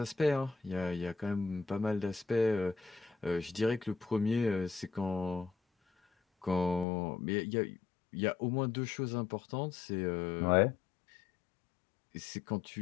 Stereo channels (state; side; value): drops out; right; at 6.9 s